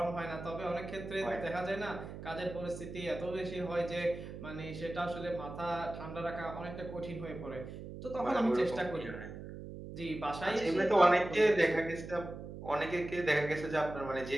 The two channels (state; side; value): noise; right; hum, 10 dB below the sound